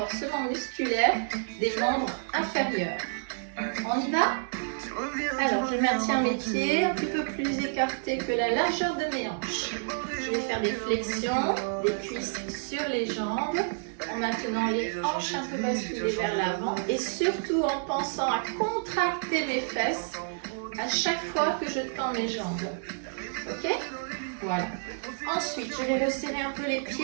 musculaire des membres inférieurs. On y va? Alors je maintiens mes pieds un petit peu plus écartés que la largeur de mes hanches. Je vais faire des flexions, des cuisses sur les jambes, en maintenant les hanches un peu basculées vers l'avant et surtout en pensant à contracter mes fesses à chaque fois que je tends mes jambes. Ok? Voilà. Ensuite, je vais resserrer un peu les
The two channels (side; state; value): left; silent; 58 dB below the other